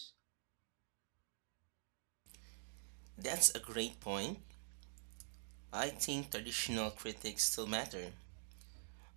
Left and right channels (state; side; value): silent; left; digital silence